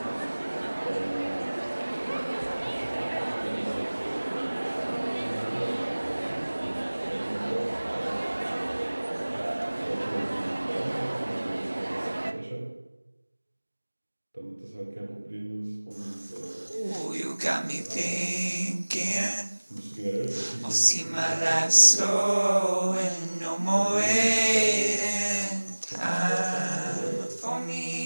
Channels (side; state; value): both; inverted; correlation -1.00